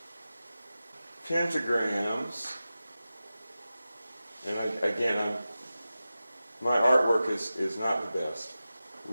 pentagrams. And my artwork is not the best.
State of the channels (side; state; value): both; inverted; correlation -0.94